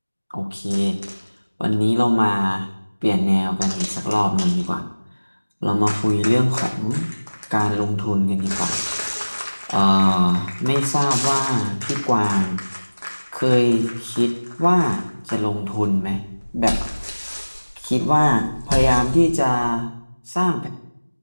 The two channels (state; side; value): inverted; both; correlation -1.00